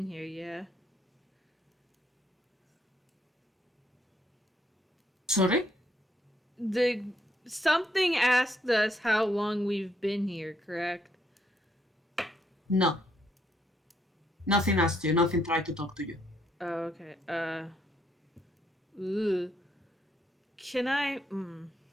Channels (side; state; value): both; normal; correlation 0.73